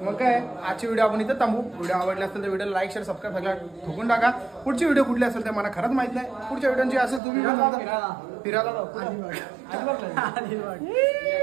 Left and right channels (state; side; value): drops out; left; at 7.2 s